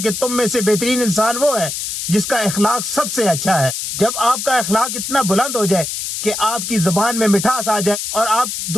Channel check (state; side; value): noise; left; hiss, 4 dB below the sound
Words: کہ تم میں سے بہترین انسان وہ ہے جس کا اخلاق سب سے اچھا ہے۔ جب آپ کا اخلاق اتنا بلند ہو جائے کہ آپ کی زبان میں مٹھاس آ جائے اور آپ